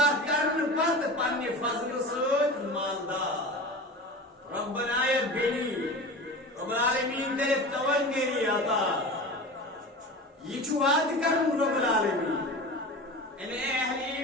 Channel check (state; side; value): normal; both; correlation 0.32